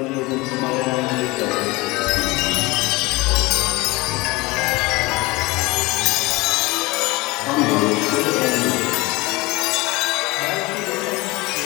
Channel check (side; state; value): right; quieter; 22.0 dB